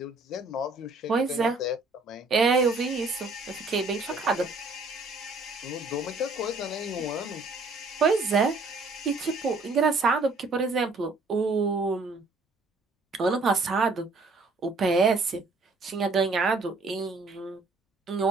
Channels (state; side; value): quieter; left; 3.3 dB